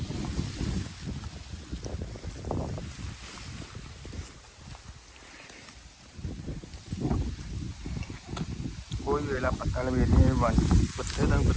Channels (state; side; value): identical; both; correlation 1.00